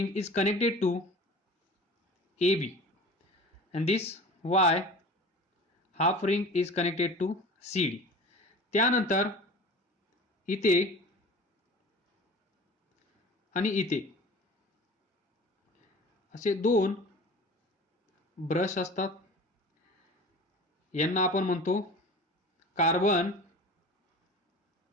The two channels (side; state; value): both; normal; correlation 0.39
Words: is connected to AB and this Y half ring is connected to CD. त्यानंतर इथे आणि इथे असे दोन ब्रश असतात, यांना आपण म्हणतो कार्बन